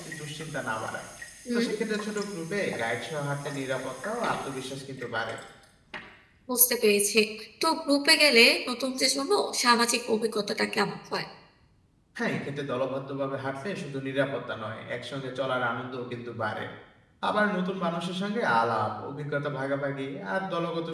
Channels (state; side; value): identical; both; correlation 1.00